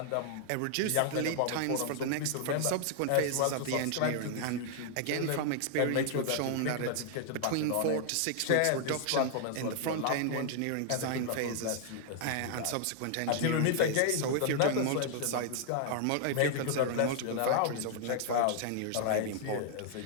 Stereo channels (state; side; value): different; both; correlation 0.00